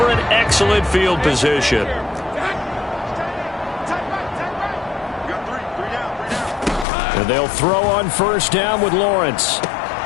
an excellent field position. And they'll throw on 1st down with Lawrence.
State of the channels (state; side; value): drops out; right; at 6.9 s